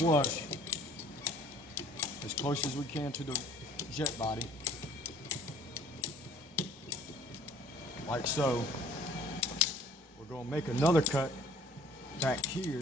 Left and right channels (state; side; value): normal; both; correlation 0.54